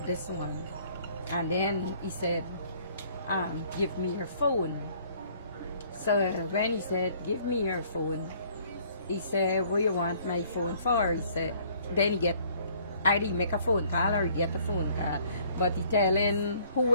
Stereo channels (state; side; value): inverted; both; correlation -0.59